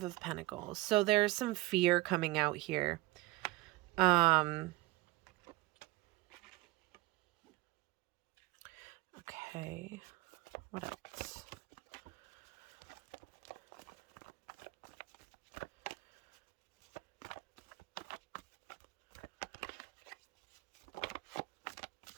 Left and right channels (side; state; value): left; quieter; 19.8 dB